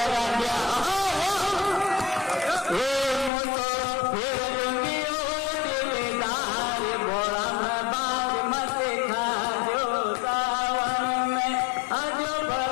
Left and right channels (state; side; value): drops out; right; at 3.3 s